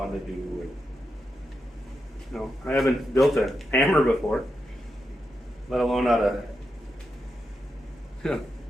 to do. And, you know, I haven't built a hammer before, let alone out of, you know,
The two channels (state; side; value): normal; both; correlation 0.86